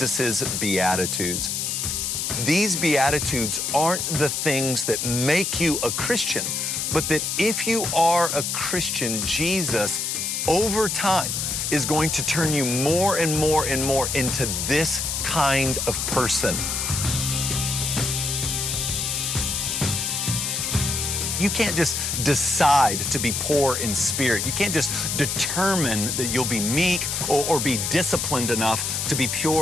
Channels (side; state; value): left; noise; hiss, 1 dB below the sound